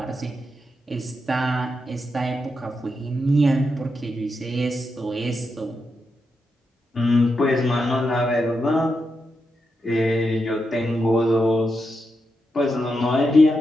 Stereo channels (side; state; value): both; normal; correlation 0.85